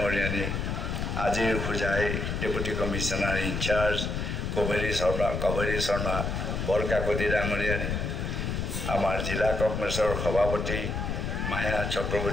আজিৰ Hojai deputy commissioner in-charge Kaberi Sharma Barkakati ডাঙৰীয়ানী, আমাৰ জিলা কংগ্ৰেছৰ সভাপতি মায়া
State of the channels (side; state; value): left; noise; rumble, 2 dB below the sound